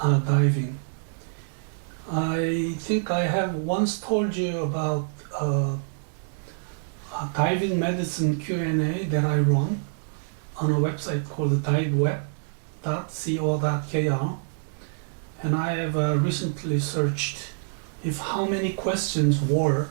diving. I think I have once told you about a diving medicine Q&A that I run on a website called diveweb.co.kr. And I have recently searched if how many questions were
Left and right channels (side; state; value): left; silent; digital silence